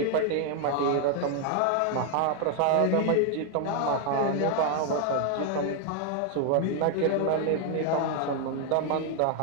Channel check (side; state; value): both; different; correlation 0.01